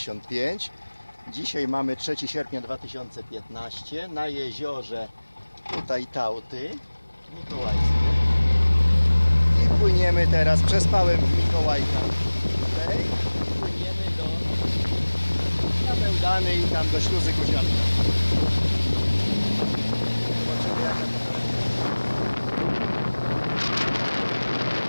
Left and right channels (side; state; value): both; inverted; correlation -1.00